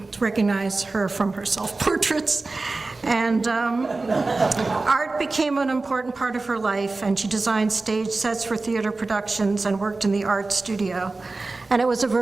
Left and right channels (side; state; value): left; quieter; 3.5 dB